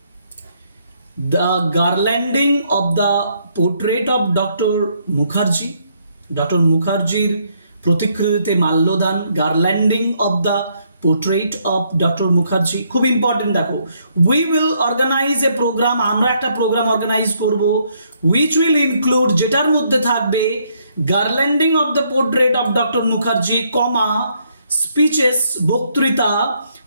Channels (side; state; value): both; inverted; correlation -0.71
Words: The garlanding of the portrait of doctor Mukherjee, doctor মুখার্জির প্রতিকৃতিতে মাল্যদান, garlanding of the portrait of doctor Mukherjee. খুব ইম্পর্টেন্ট, দেখো we will organise a programme, আমরা একটা প্রোগ্রাম অর্গানাইজ করব, উইচ উইল ইনক্লুড যেটার মধ্যে থাকবে garlanding of the portrait of doctor Mukherjee, comma speeches বক্তৃতা,